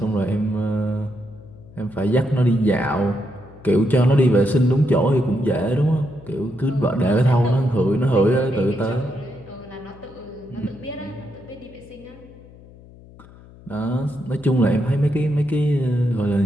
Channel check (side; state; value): left; noise; hum, 22 dB below the sound